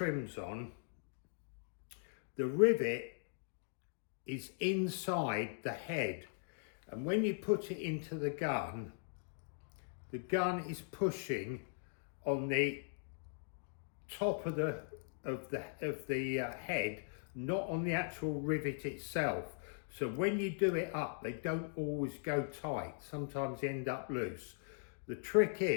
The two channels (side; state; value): right; silent; digital silence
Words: on, the rivet is inside the head. And when you put it into the gun is pushing on the top of the head, not on the actual rivet itself. So when you do it up, they don't always go tight. Sometimes they end up loose. The trick